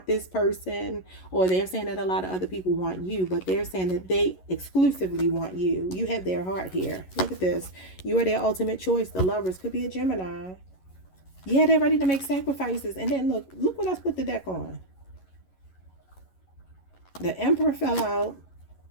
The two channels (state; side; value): late; right; 11 ms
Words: this person, or they're saying that a lot of other people want you, but they're saying that they exclusively want you. You have their heart here. Look at this. You are their ultimate choice. The Lovers could be a Gemini. Yeah, they're ready to make sacrifices. And then look what I put the deck on. The Emperor fell out,